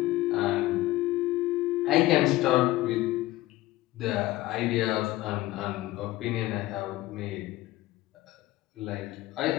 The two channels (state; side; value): quieter; right; 17.3 dB